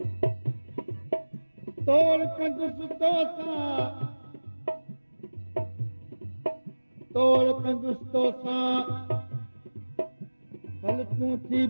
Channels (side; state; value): both; inverted; correlation -1.00